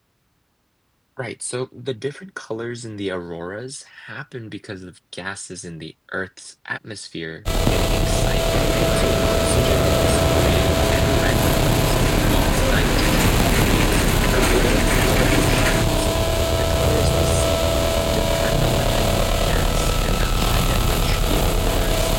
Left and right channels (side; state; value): both; identical; correlation 1.00